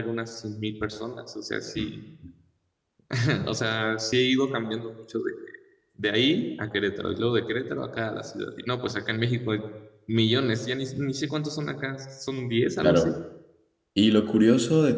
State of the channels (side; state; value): both; identical; correlation 1.00